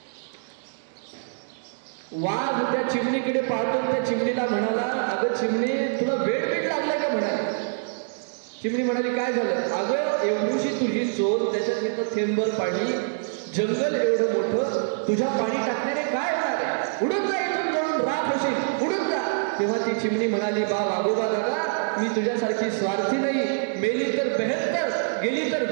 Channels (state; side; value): silent; left; digital silence